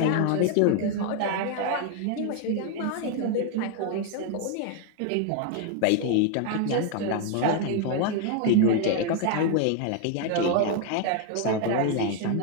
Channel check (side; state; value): both; different; correlation 0.01